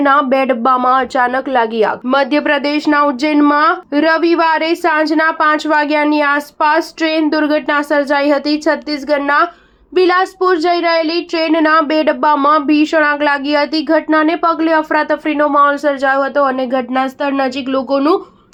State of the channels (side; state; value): both; identical; correlation 1.00